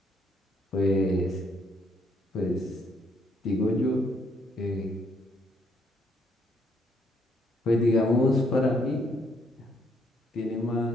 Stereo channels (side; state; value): both; normal; correlation 0.70